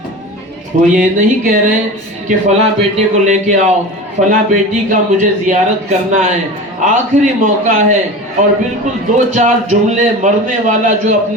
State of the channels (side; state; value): both; normal; correlation 0.32